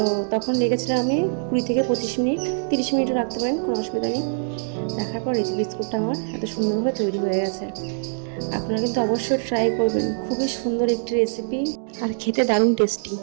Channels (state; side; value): silent; left; digital silence